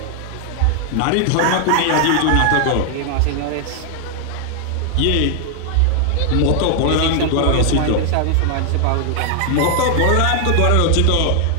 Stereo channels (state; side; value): different; both; correlation 0.00